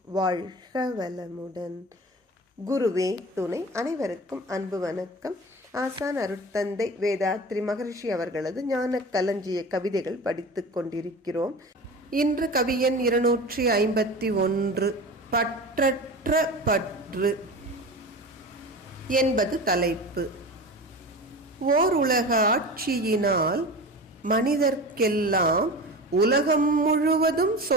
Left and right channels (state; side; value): normal; both; correlation 0.33